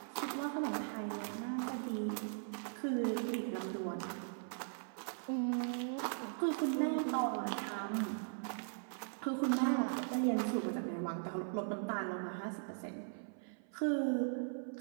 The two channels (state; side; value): silent; left; 52 dB below the other